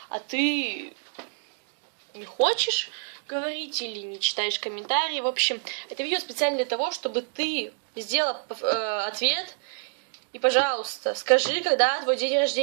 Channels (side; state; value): left; silent; 60 dB below the other